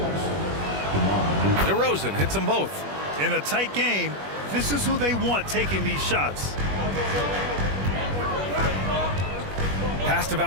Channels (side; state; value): left; late; 21 ms